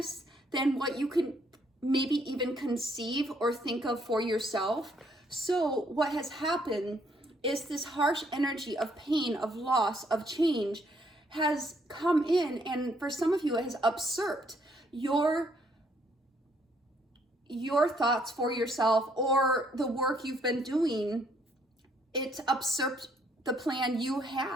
than what you can maybe even conceive or think of for yourself. So what has happened is this harsh energy of pain, of loss, of change has come in, and for some of you it has usurped your thoughts for yourself or the work you've been doing. It's usurped the plan you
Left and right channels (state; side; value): normal; both; correlation 0.68